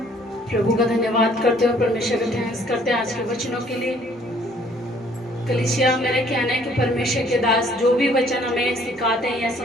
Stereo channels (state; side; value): normal; both; correlation 0.60